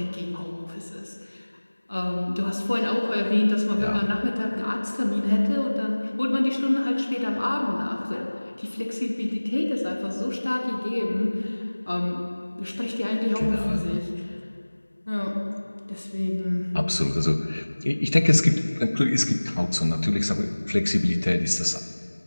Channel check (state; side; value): inverted; both; correlation -1.00